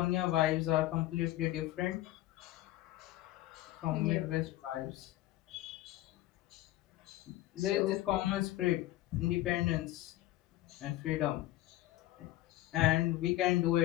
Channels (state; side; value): quieter; right; 15.8 dB